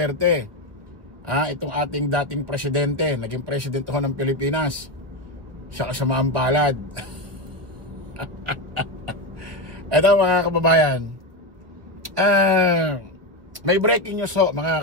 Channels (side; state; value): left; late; 1.3 ms